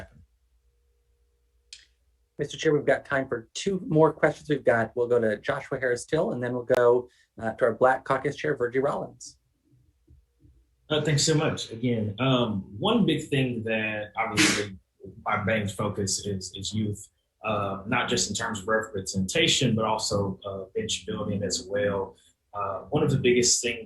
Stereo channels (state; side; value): identical; both; correlation 1.00